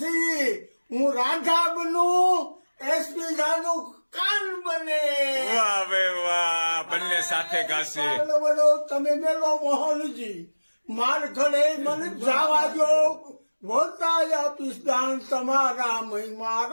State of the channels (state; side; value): inverted; both; correlation -1.00